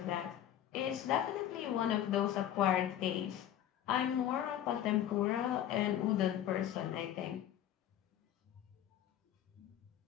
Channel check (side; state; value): right; quieter; 11.2 dB